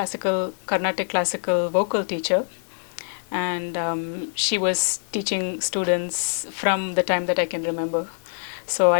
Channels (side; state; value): right; silent; digital silence